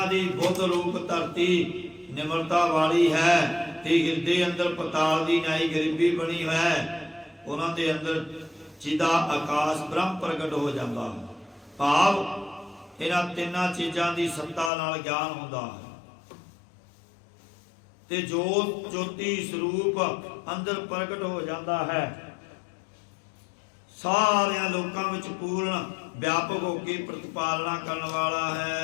ਦੀ ਬੁੱਧ ਰੂਪ ਧਰਤੀ ਨਿਮਰਤਾ ਵਾਲੀ ਹੈ ਤੇ ਹਿਰਦੇ ਅੰਦਰ ਪਤਾਲ ਦੀ ਨਾਈ ਗਰੀਬੀ ਬਣੀ ਹੈ, ਉਹਨਾਂ ਦੇ ਅੰਦਰ ਜਿਹਦਾ ਆਕਾਸ਼ ਬ੍ਰਹਮ ਪ੍ਰਗਟ ਹੋ ਜਾਂਦਾ ਹੈ। ਭਾਵ ਇਹਨਾਂ ਤਿੰਨਾਂ ਚੀਜ਼ਾਂ ਦੀ ਸੱਤਾ ਨਾਲ ਗਿਆਨ ਹੁੰਦਾ ਹੈ, ਤੇ ਜੋਤ ਜੋਤੀ ਸਰੂਪ ਅੰਦਰ ਪ੍ਰਗਟ ਹੋ ਜਾਂਦਾ ਹੈ। ਸਾਰਿਆਂ ਲੋਕਾਂ ਵਿੱਚ ਪੂਰਨ ਵਿਆਪਕ ਹੋ ਕੇ ਪ੍ਰਤਿਪਾਲਨਾ ਕਰਨ ਵਾਲਾ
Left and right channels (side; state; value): right; drops out; at 14.7 s